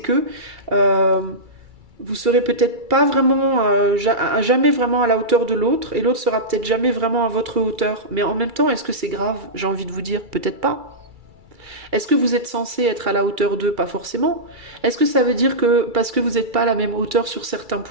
vous serez peut-être pas vraiment, jamais vraiment à la hauteur de l'autre, et l'autre sera peut-être jamais vraiment à votre hauteur. Mais en même temps, est-ce que c'est grave? J'ai envie de vous dire, peut-être pas. Est-ce que vous êtes censé être à la hauteur d'eux? Pas forcément. Est-ce que ça veut dire que parce que vous n'êtes pas à la même hauteur sur certains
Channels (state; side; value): late; left; 2.3 ms